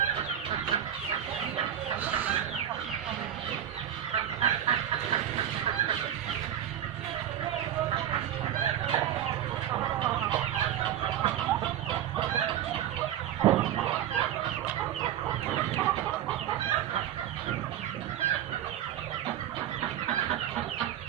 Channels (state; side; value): quieter; left; 10.9 dB